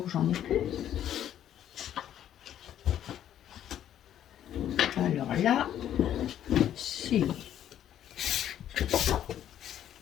j'en ai plus. Alors là, c'est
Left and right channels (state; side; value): quieter; right; 10.8 dB